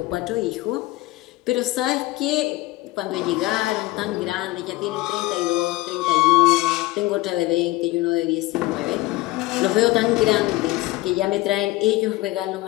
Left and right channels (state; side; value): quieter; right; 19.5 dB